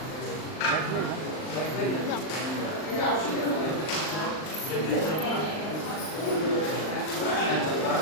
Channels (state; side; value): late; right; 39 ms